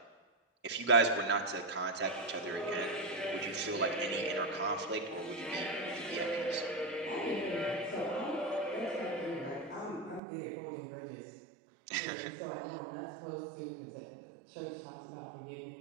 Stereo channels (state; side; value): drops out; left; at 10.2 s